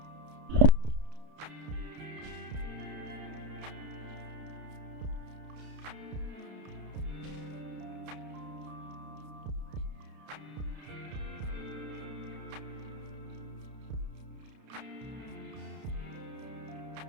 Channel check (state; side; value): late; left; 31 ms